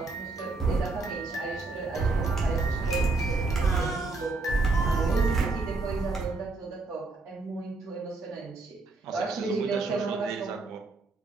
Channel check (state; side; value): quieter; left; 3.5 dB